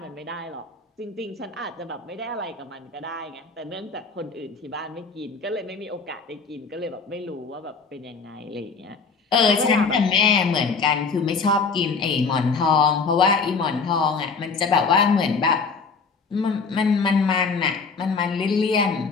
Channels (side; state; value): right; quieter; 4.8 dB